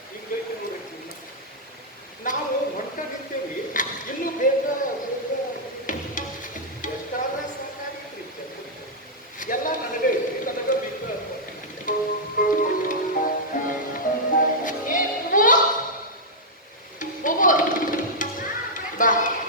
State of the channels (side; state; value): both; normal; correlation -0.07